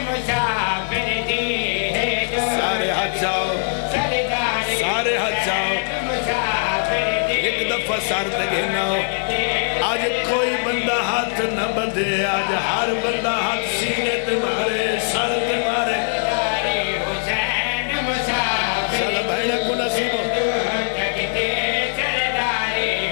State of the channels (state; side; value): silent; right; digital silence